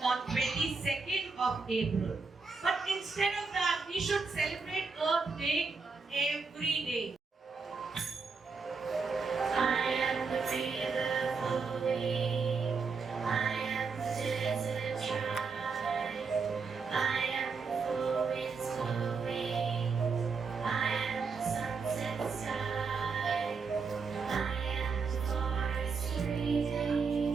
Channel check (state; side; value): quieter; left; 4.8 dB